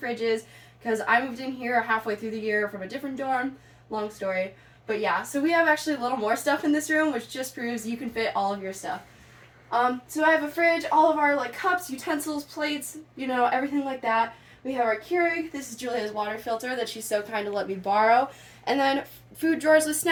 because I moved in here halfway through the year from a different dorm. Long story. But yeah, so we have actually a little more stuff in this room, which just proves you can fit all of your stuff. So I have a fridge, all of our cups, utensils, plates, everything like that. We have our Keurig. This is Julia's water filter that she's so kind to let me borrow. And then food drawers with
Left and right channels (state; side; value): identical; both; correlation 1.00